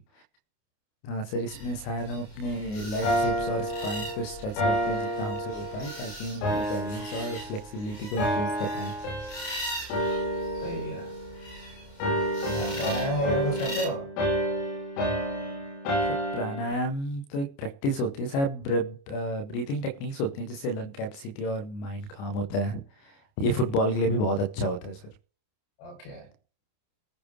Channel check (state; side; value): late; right; 29 ms